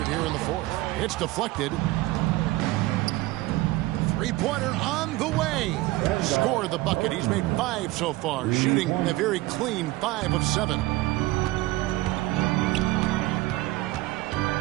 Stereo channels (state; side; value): quieter; left; 19.0 dB